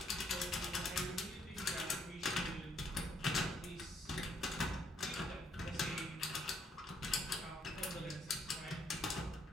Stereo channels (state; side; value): normal; both; correlation 0.70